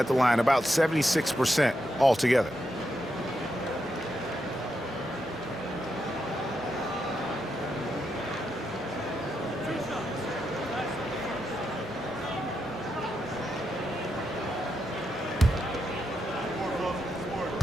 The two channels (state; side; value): normal; both; correlation 0.83